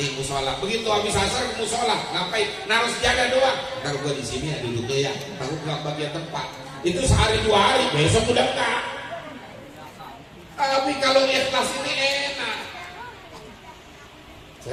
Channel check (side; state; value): both; identical; correlation 1.00